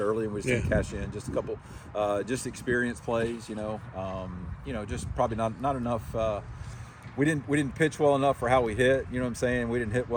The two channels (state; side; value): identical; both; correlation 1.00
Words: and we just didn't cash in. Just a couple, just experience plays. Just probably not enough. We didn't pitch well enough for how we hit. You know what I'm saying? We didn't hit